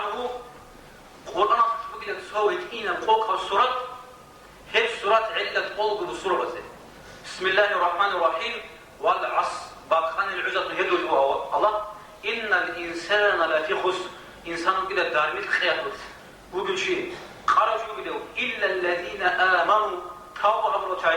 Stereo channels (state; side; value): identical; both; correlation 1.00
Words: قرآن بقول سوي إينا فوق السورة هي سورة علة قلب السورة بسم الله الرحمن الرحيم والعصر باقان العزة يدل الله إن الإنسان لفي خسر إنسان كده دارميت خياطات وقل شيء قالوا شو بدو إلا الذين آمنوا توبوا أمروا